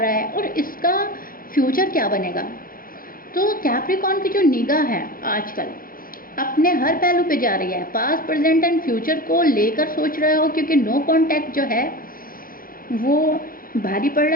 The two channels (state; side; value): late; right; 0.41 ms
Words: है और इसका फ्यूचर क्या बनेगा। तो कैप्रिकॉर्न की जो निगाह है आजकल अपने हर पहलू पे जा रही है, पास्ट प्रेजेंट एंड फ्यूचर को लेकर सोच रहे हो, क्योंकि नो कॉन्टैक्ट जो है वो भारी पड़